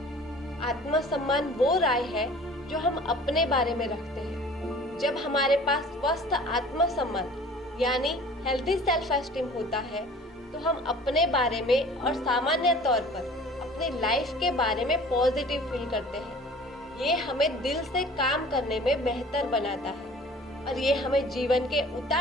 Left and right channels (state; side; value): normal; both; correlation 0.47